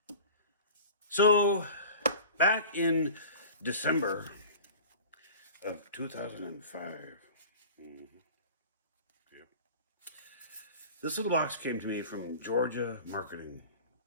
So, back in December of 2005, this little box came to me from Georgia Marketing.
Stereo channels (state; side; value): inverted; both; correlation -0.39